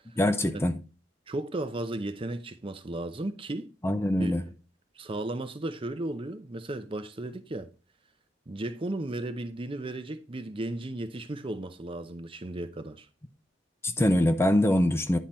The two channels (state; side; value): normal; both; correlation 0.85